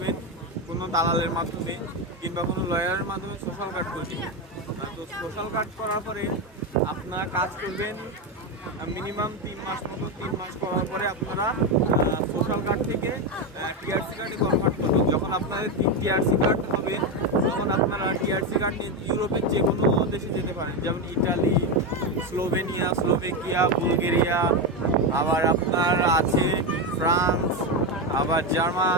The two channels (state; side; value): normal; both; correlation 0.11